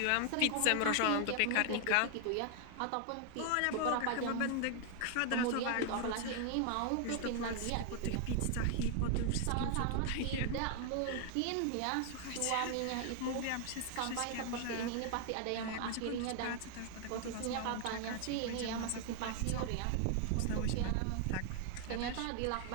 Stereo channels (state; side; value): different; both; correlation 0.00